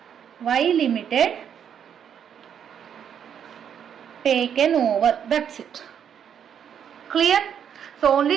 Y Limited taken over. That's it. Clear? So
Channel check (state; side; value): quieter; left; 8.4 dB